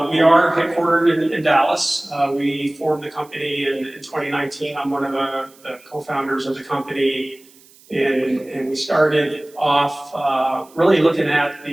we are headquartered in Dallas. We formed the company in 2019. I'm one of the co-founders of the company. And we started off really looking at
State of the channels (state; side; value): noise; right; hiss, 27 dB below the sound